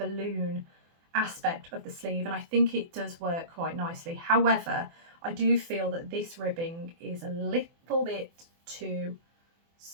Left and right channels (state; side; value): late; left; 24 ms